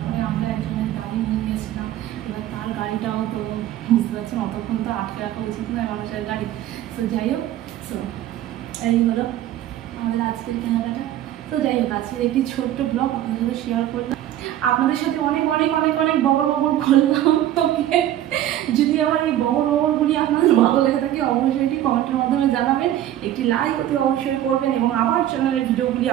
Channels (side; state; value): left; quieter; 12.5 dB